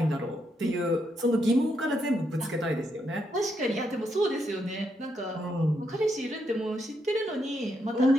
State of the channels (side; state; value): both; normal; correlation 0.79